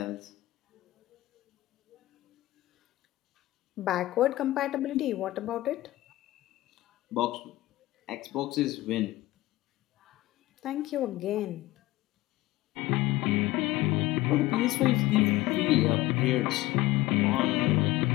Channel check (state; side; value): quieter; right; 17.6 dB